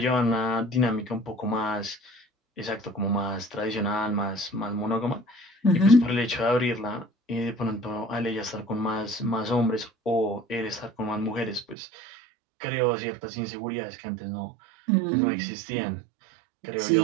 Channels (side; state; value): left; drops out; at 11.8 s